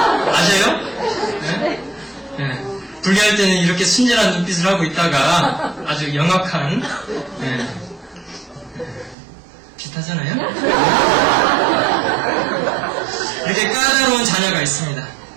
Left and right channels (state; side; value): drops out; left; at 9.2 s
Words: 아세요? 분리할 때는 이렇게 순진한 눈빛을 하고 있다가 아주 영악한, 비슷하잖아요? 이렇게 까다로운 자녀가 있습니다.